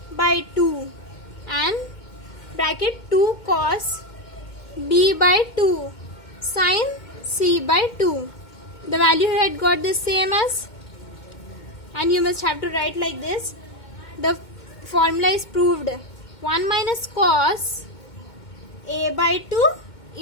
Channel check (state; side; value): late; right; 2.2 ms